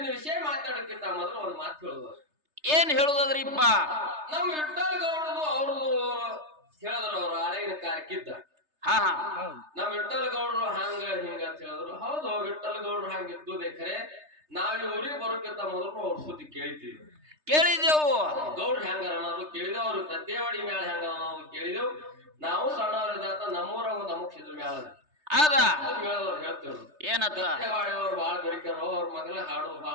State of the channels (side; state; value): left; late; 3.3 ms